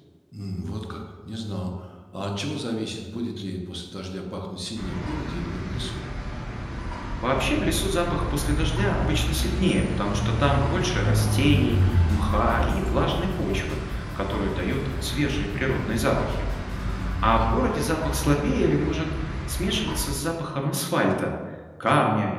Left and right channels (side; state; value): both; identical; correlation 1.00